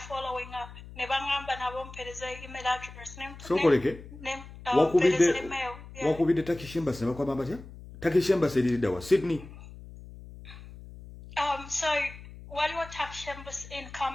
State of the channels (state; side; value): noise; left; hum, 16 dB below the sound